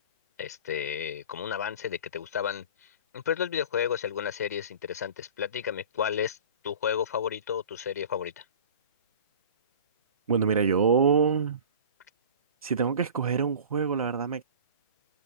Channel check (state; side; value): inverted; both; correlation -0.39